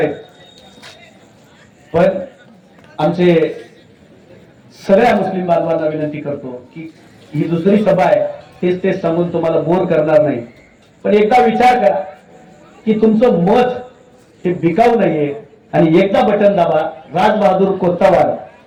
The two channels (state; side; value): identical; both; correlation 1.00